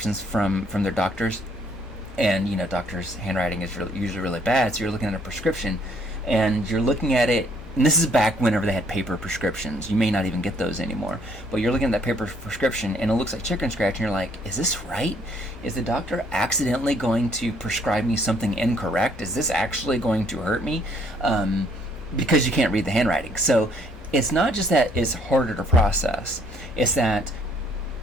from their doctors, and, doctors' handwriting is usually really bad. So you're looking at a prescription and you're looking at it, and this is back whenever they had paper prescriptions. You may not even get those anymore, but you're looking at that paper prescription and it looks like chicken scratch, and you're like, is this right? Is the doctor accidentally going to prescribe me something incorrect? Is this actually going to hurt me? Because you can't read the handwriting. So it's not just that it's harder to process, it's that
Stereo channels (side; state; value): both; normal; correlation 0.65